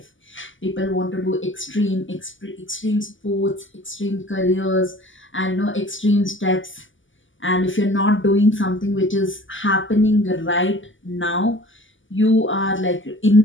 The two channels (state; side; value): late; right; 0.56 ms